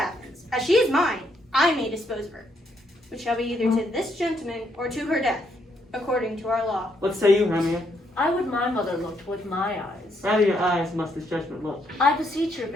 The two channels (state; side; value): normal; both; correlation 0.74